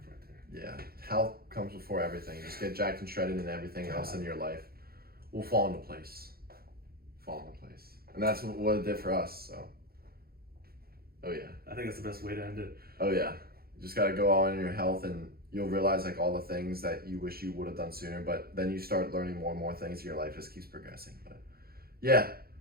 right there. Yeah. Health comes before everything. Just get jacked and shredded, and everything else in your life will fall into place. And that's what it did for us, so. Oh, yeah. I think that's the best way to end it. Oh, yeah. You just got to go all in your health, and you'll realize, like, all the things that you wish you would have done sooner, but then you start learning more and more things, and your life just keeps progressing. But, yeah.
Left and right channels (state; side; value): late; left; 0.44 ms